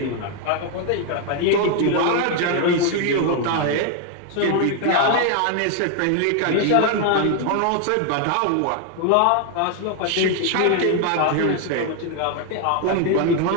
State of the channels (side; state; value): both; different; correlation 0.00